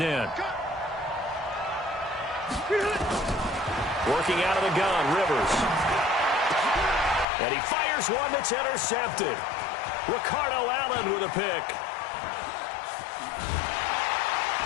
Working out of the gun, Rivers. And he fires one that's intercepted. Ricardo Allen with a pick.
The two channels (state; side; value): drops out; right; at 7.2 s